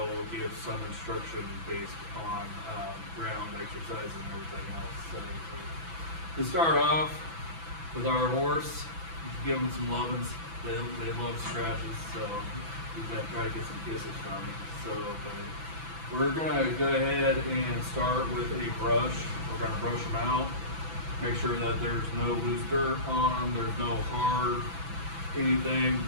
give some instruction based on ground exercises and everything else. So to start off with our horse, give them some lovin's. They love scratches, so we gotta try to get some kisses from him. So we're gonna go ahead and start with a brush. We're gonna brush them out, make sure that there's no loose dirt on them, there's no hard anything.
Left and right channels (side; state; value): left; late; 6.0 ms